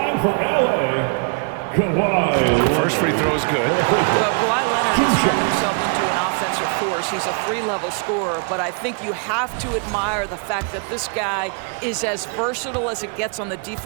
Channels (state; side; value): quieter; left; 38.5 dB